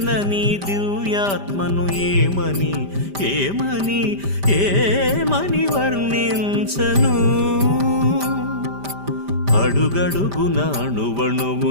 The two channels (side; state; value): left; late; 5.1 ms